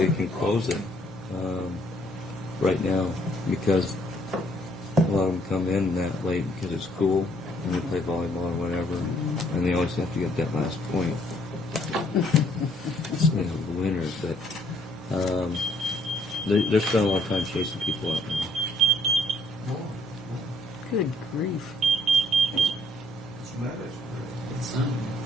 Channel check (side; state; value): both; normal; correlation 0.66